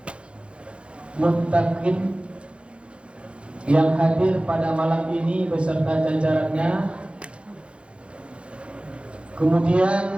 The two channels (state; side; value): late; left; 0.059 ms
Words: Muttaqin yang hadir pada malam ini beserta jajarannya.